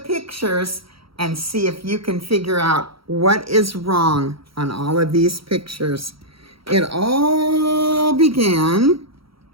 and see if you can figure out what is wrong on all of these pictures. It all began,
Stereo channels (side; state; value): left; late; 0.75 ms